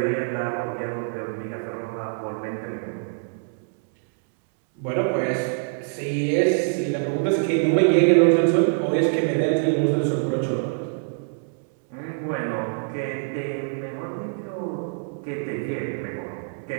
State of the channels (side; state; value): left; silent; 62 dB below the other